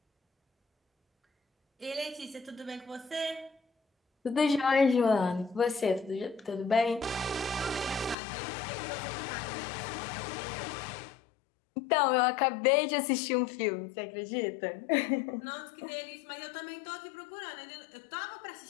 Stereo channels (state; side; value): drops out; right; at 8.2 s